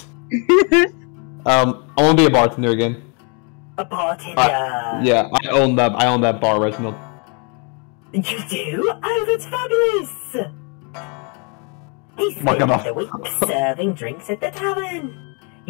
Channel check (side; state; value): right; quieter; 35.4 dB